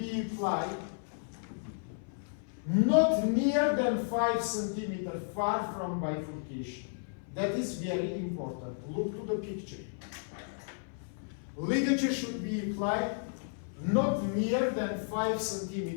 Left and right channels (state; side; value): silent; right; 56 dB below the other